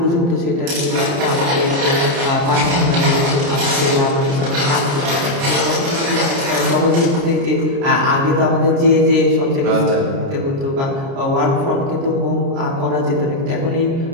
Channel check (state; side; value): late; left; 29 ms